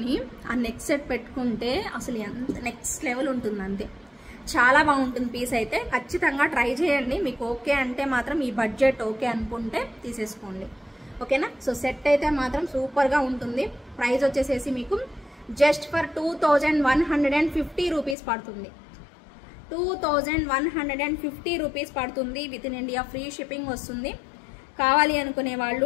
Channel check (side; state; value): right; drops out; at 18.2 s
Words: ఆ నెక్ సెట్ పెట్టుకుంటే అసలు ఎంత నెక్స్ట్ లెవెల్ ఉంటుంది అంతే. చాలా బాగుంటుంది పీస్ అయితే, ఖచ్చితంగా ట్రై చేయండి. మీకు ఓకే అంటే మాత్రం, ఈ బడ్జెట్ ఓకే అనుకుంటే తీసేసుకోండి. ఓకేనా, సో సెట్ అయితే మాత్రం సూపర్గా ఉంటుంది. ప్రైస్ వచ్చేసేసి మీకు జస్ట్ ఫర్ 2150 రూపీస్ పడుతుంది. 2150 రూపీస్ పడుతుంది. With in India free shipping వస్తుంది. కావాలి అనుకునే వాళ్ళు